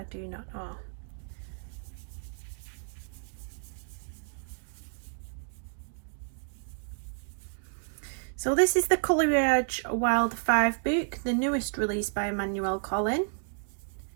do not know. So this is the Coleridge Wild 5 book, the newest release by Emmanuel Collin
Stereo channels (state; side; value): silent; left; digital silence